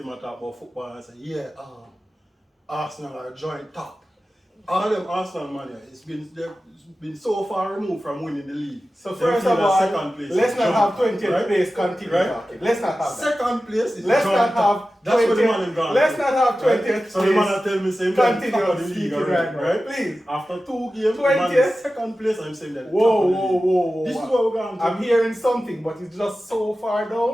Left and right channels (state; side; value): normal; both; correlation 0.94